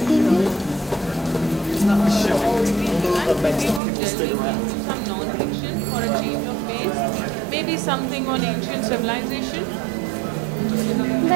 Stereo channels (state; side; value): drops out; left; at 3.8 s